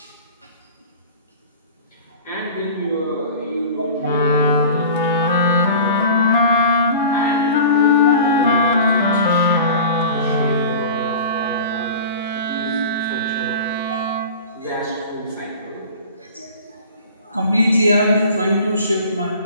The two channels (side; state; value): both; inverted; correlation -0.39